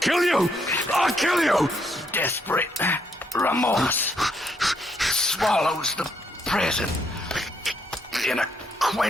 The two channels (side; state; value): both; normal; correlation 0.74